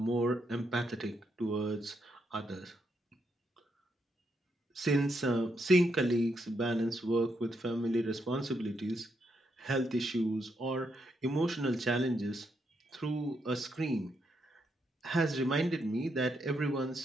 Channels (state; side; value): normal; both; correlation 0.79